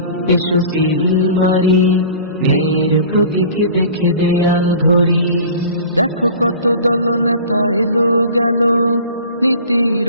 এসো সিল মারি, ন্যায়ের প্রতীক দেখে দেয়াল ঘড়ি। দেখো কত দলনেতা এলো গেল, নীতির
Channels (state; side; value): inverted; both; correlation -0.42